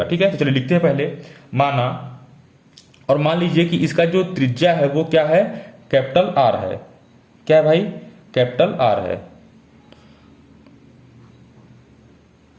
ठीक है। तो चलिए लिखते हैं पहले, माना, और मान लीजिए कि इसका जो त्रिज्या है वो क्या है, कैपिटल R है, क्या है भाई, कैपिटल R है।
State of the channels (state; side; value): identical; both; correlation 1.00